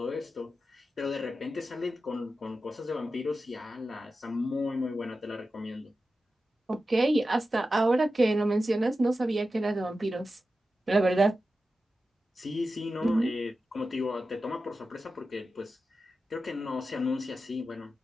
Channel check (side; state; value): both; normal; correlation 0.92